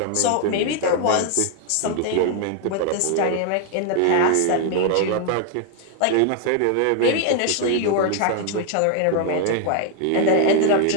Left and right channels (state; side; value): different; both; correlation 0.00